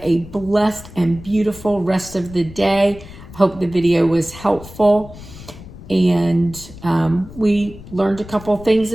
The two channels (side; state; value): left; noise; rumble, 16 dB below the sound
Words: a blessed and beautiful rest of the day. I hope the video was helpful. And we learned a couple things